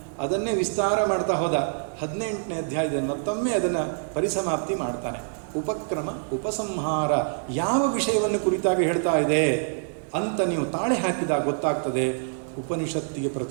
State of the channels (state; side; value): silent; left; digital silence